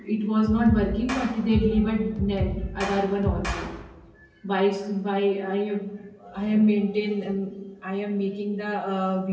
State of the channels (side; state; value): both; identical; correlation 1.00